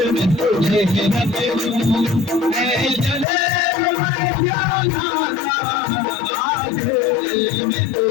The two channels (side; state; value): right; drops out; at 3.2 s